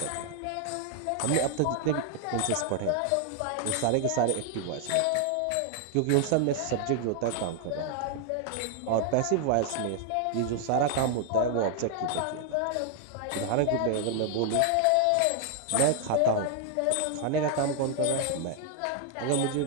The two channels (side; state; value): both; different; correlation 0.00